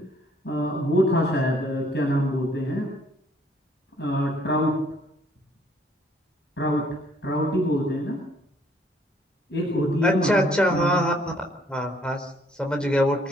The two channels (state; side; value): normal; both; correlation 0.64